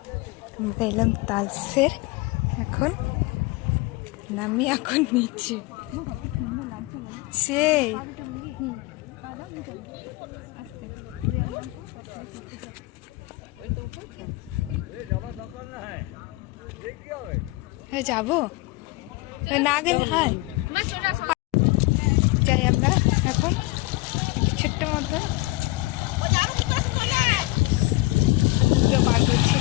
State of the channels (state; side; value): quieter; right; 21.4 dB